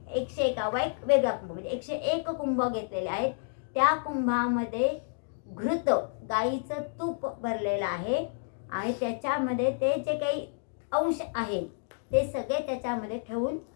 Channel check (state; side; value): silent; right; digital silence